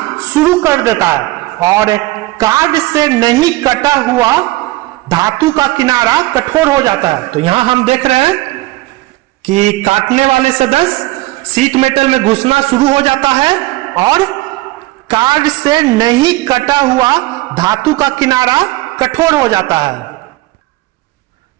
शुरू कर देता है और कार्ड से नहीं कटा हुआ धातु का किनारा कठोर हो जाता है। तो यहां हम देख रहे हैं कि काटने वाले सदस्य सीट मेटल में घुसना शुरू हो जाता है और कार्ड से नहीं कटा हुआ धातु का किनारा कठोर हो जाता है।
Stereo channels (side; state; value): left; quieter; 19.3 dB